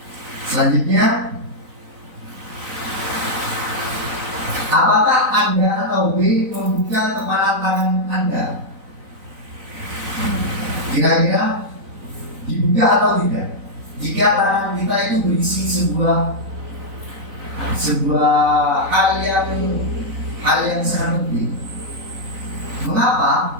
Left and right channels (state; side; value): late; left; 4.0 ms